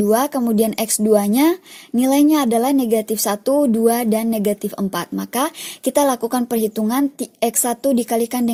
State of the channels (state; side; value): identical; both; correlation 1.00